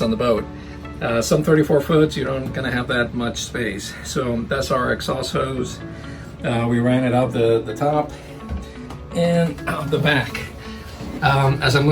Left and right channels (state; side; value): identical; both; correlation 1.00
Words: on the boat. Some 34 foots, you don't gonna have that much space. So that's our exhaust hose. We ran it out the top and out the back. As I'm